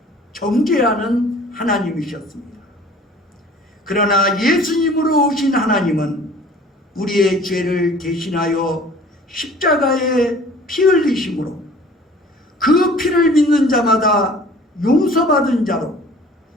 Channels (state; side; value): normal; both; correlation 0.49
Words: 정죄하는 하나님이셨습니다. 그러나 예수님으로 오신 하나님은 우리의 죄를 대신하여 십자가에 피 흘리심으로 그 피를 믿는 자마다 용서받은 자로